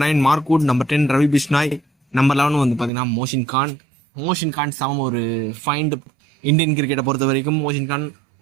9 Mark Wood, number 10 Ravi Bishnoi, number 11 வந்து பார்த்தீங்கன்னா மோஷின் கான் சமம் ஒரு ஃபைண்ட். இந்தியன் கிரிக்கெட்டை பொறுத்த வரைக்கும் மோஷின் கான்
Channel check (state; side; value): drops out; left; at 2.9 s